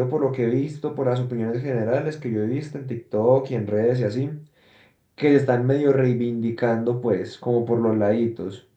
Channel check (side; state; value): both; identical; correlation 1.00